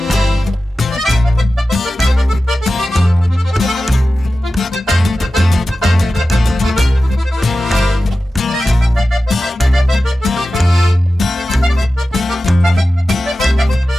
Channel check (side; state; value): both; normal; correlation 0.94